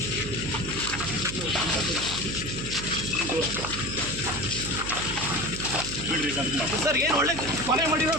ಸರ್ ಏನು ಒಳ್ಳೆ ಕೊಲೆ ಮಾಡಿರೋ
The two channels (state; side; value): noise; right; hum, 7 dB below the sound